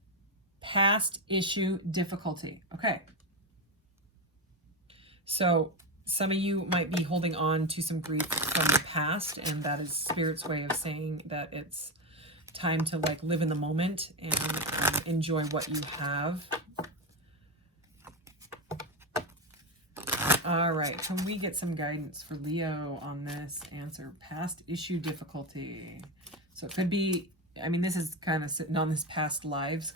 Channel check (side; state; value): both; normal; correlation 0.13